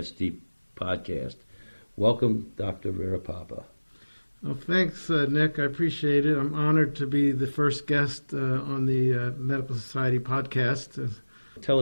podcast. Welcome, Dr. Varipapa. Well, thanks, Nick. I appreciate it. I'm honored to be the first guest on the Medical Society podcast. Tell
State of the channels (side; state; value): both; inverted; correlation -1.00